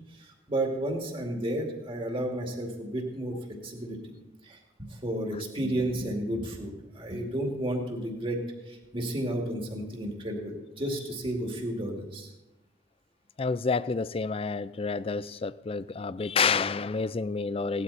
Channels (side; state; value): both; normal; correlation 0.43